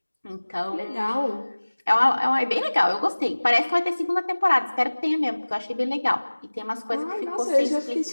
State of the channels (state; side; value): inverted; both; correlation -1.00